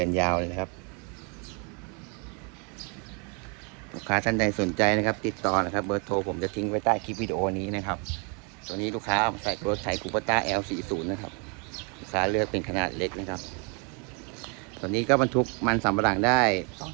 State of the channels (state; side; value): quieter; left; 35.6 dB